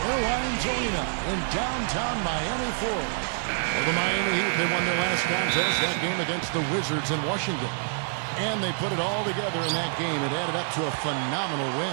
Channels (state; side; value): silent; left; digital silence